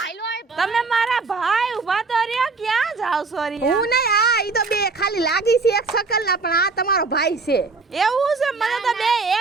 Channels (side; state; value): left; quieter; 4.1 dB